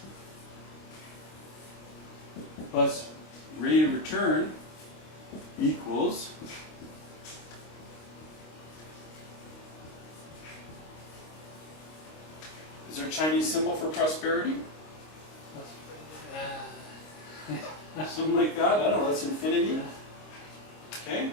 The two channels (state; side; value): late; right; 26 ms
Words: plus rate of return equals is there a Chinese symbol for prosperity? Something like that? I don't know, that's infinity. Okay?